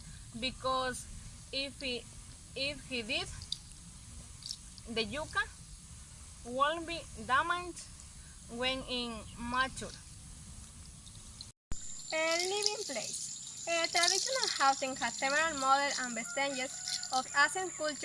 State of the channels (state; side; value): identical; both; correlation 1.00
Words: because if he did, the yucca won't be damaged when immature. Living place. Traditional housing has several models and vestiges of ancient